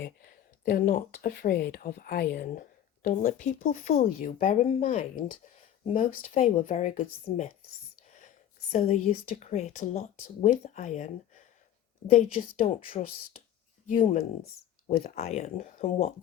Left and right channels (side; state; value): right; quieter; 10.8 dB